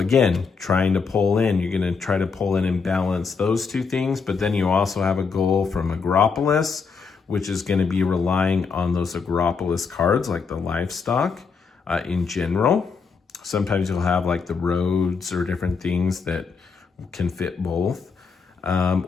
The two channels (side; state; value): right; quieter; 5.3 dB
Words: trying to pull in, you're going to try to pull in and balance those 2 things, but then you also have a goal from Agropolis, which is going to be relying on those Agropolis cards like the livestock in general. Sometimes you'll have like the roads or different things that can fit both.